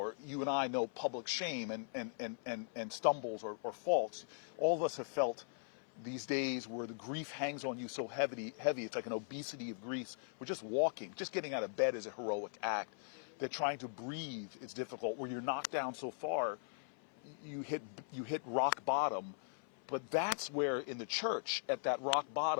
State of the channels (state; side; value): silent; right; 51 dB below the other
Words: you and I know public shame and stumbles or faults, all of us have felt these days where the grief hangs on you so heavy, it's like an obesity of grief. We're just walking, just getting out of bed is a heroic act. That trying to breathe is difficult, where you're knocked down so far, you hit rock bottom. But that's where in the church, at that rock